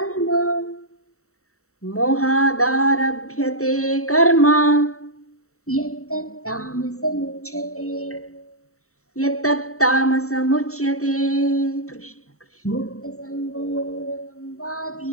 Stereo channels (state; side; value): late; right; 0.64 ms